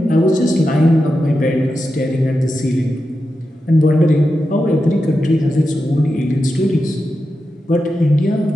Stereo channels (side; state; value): both; normal; correlation 0.90